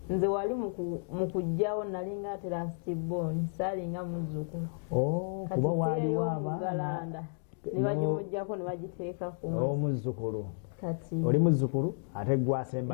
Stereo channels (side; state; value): right; silent; digital silence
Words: nze wali mu kujjawo nalinga ate lastborn saalinga muzzukulu kuba waliwo abaana ne bagimuggyako ne bagiteeka ku omuzzukulu kati oli muzzukulu ate